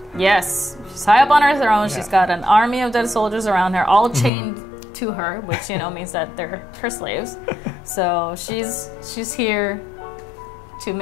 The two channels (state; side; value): drops out; right; at 4.3 s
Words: Yes, she's high up on her throne. She's got an army of dead soldiers around her, all chained to her, which, you know, means that they're her slaves. So she's here to